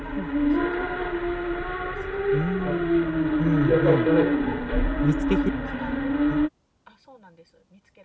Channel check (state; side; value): identical; both; correlation 1.00